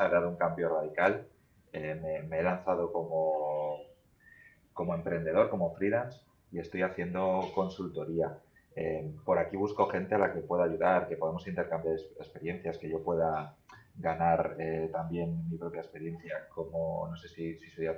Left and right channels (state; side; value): identical; both; correlation 1.00